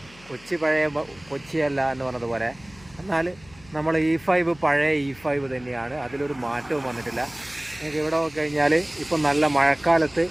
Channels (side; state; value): left; noise; hum, 24 dB below the sound